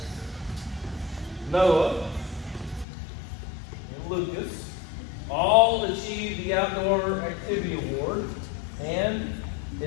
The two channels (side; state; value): right; drops out; at 2.9 s